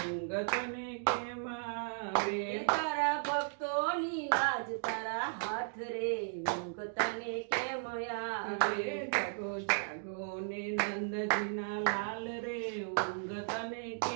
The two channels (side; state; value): left; silent; digital silence